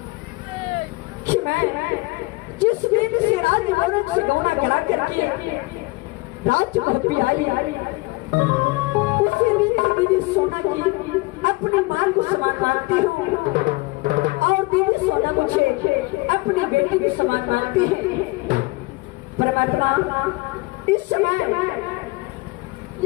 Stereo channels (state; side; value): quieter; right; 23.9 dB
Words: कि मैं जिस दिन से राज्य भवन से गौना करा करके राज्य भवन आई उसी दिन से दीदी सोना की अपनी मां को समान मानती हूँ और दीदी सोना मुझे अपनी बेटी के समान मानती है। परमात्मा इस समय